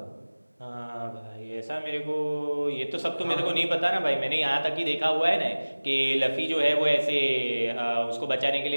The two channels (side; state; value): both; inverted; correlation -1.00